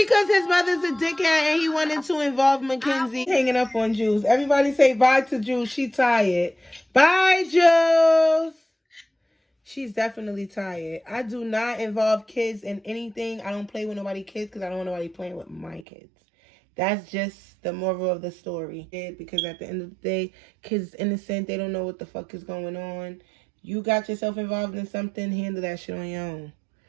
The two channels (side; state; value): left; drops out; at 15.9 s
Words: his mother's a dickhead and he wanted to involve Mackenzie. Hanging up on Jules. Everybody say bye to Jules. She tired. Bye, Jules. She's definitely tired. I do not involve kids in anything. I don't play with nobody's kids because I don't want nobody playing with my kids. That's just the moral of the story. Because at the end of the day, kids innocent. They don't know what the fuck is going on. You got yourself involved in something, handle that shit on your own.